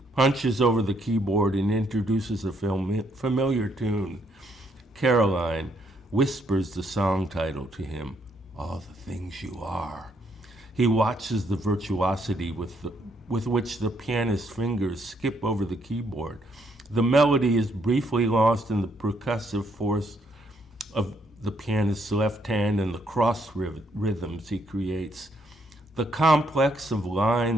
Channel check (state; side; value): normal; both; correlation 0.72